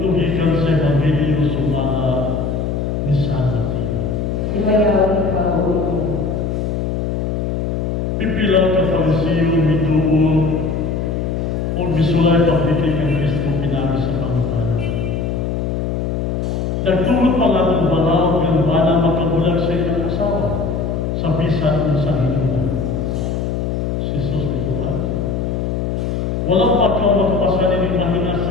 sa Ebanghelyo sumala ni San Mateo. Imayaw ka o ito. Pipila ka Fariseo mituo o bisulay pagdikin ng Kristo pinami sa pangutan. Nagtulog pa nga itong balaw ng bana makabulag sa inyong asawa sa bisan ng sa hinunan. Si Jesus ituwa. Walang pagkaw makapasanin ng mahina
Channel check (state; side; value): noise; left; hum, 1 dB below the sound